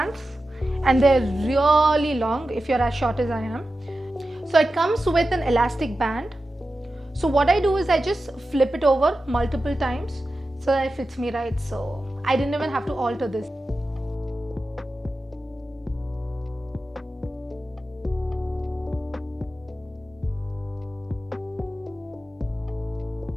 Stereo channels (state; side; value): normal; both; correlation 0.92